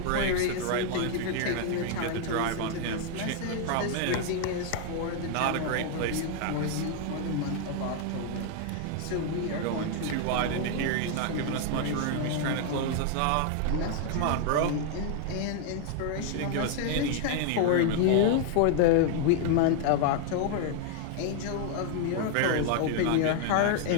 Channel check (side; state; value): both; different; correlation 0.00